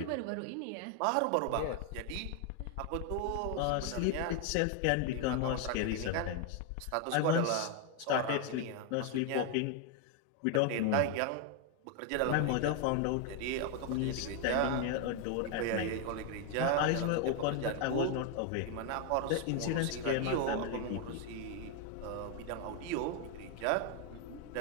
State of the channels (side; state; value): both; different; correlation 0.01